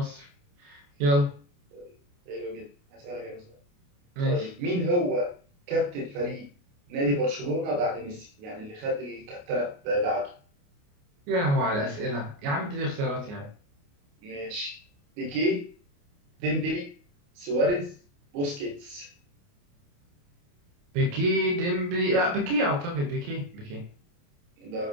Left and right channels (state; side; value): late; left; 28 ms